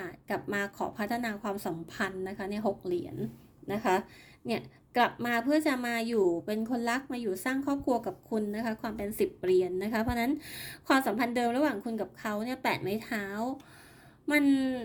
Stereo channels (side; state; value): both; identical; correlation 1.00